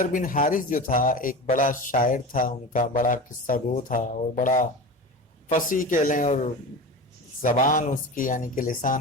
بن حارث جو تھا ایک بڑا شاعر تھا، ان کا بڑا قصہ گو تھا اور بڑا فصیح کہہ لیں، اور زبان اس کی یعنی کہ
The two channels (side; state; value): both; normal; correlation 0.29